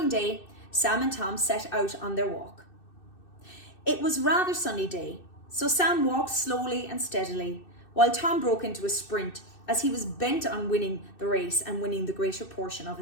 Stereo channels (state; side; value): late; right; 2.6 ms